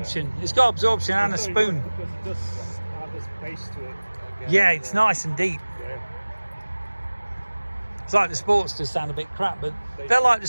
It's got absorption and a spoon. Because it does have a space to it. I guess. Yeah, it's nice and deep. Yeah. It's like the Sportsters sound a bit crap, but they're like the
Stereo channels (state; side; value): inverted; both; correlation -1.00